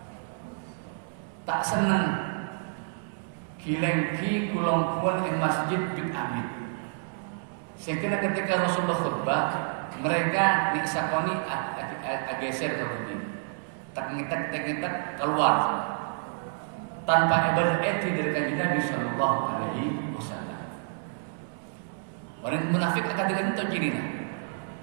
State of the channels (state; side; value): silent; left; digital silence